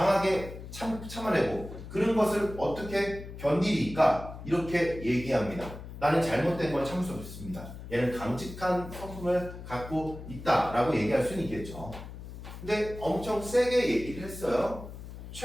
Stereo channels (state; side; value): noise; left; hum, 12 dB below the sound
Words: 참아내고 그런 것을 어떻게 견디리까 이렇게 얘기합니다. 나는 잘못된 걸 참을 수 없습니다. 얘는 강직한 성품을 갖고 있다라고 얘기할 수는 있겠죠. 근데 엄청 세게 얘기를 했어요.